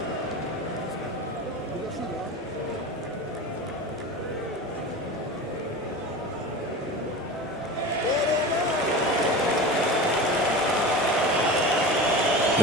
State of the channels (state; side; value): normal; both; correlation 0.30